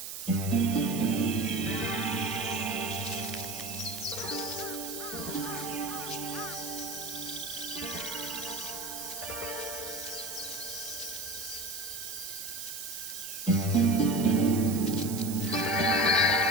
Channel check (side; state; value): right; noise; hiss, 7 dB below the sound